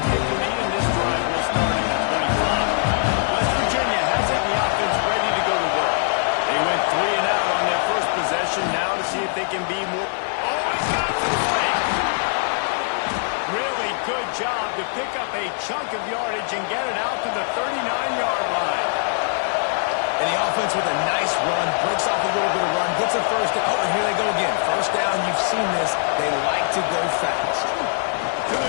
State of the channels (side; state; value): right; silent; 64 dB below the other